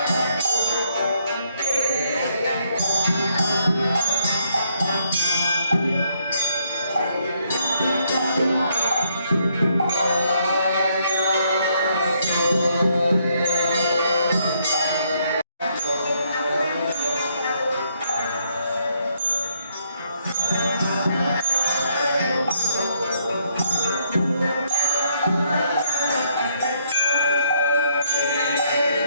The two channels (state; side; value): inverted; both; correlation -0.71